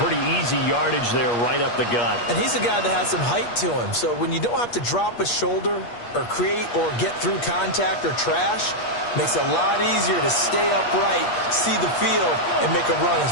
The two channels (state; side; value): late; right; 8.4 ms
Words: easy yardage there right up the gut. And he's a guy that has some height to him. So when you don't have to drop a shoulder or create or get through contact or trash, makes it a lot easier to stay upright, see the field, and make a run